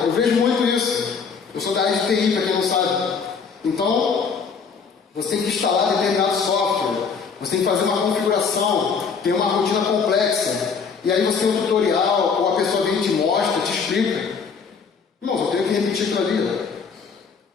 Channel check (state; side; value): quieter; right; 5.7 dB